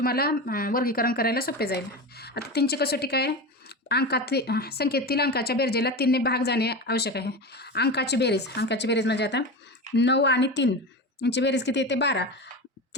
वर्गीकरण करायला सोपे जाईल. आता 3ची कसोटी काय आहे? संख्येतील अंकाच्या बेरजेला 3ने भाग जाणे आवश्यक आहे. अंकाची बेरीज म्हणजे आता 9 आणि 3 यांची बेरीज किती येते? 12.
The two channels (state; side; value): normal; both; correlation 0.24